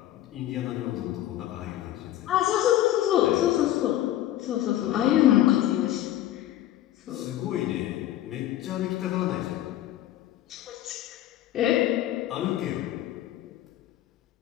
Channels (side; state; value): right; quieter; 13.3 dB